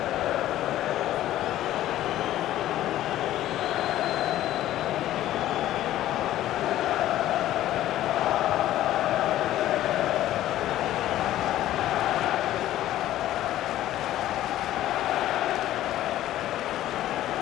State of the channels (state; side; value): quieter; right; 13.6 dB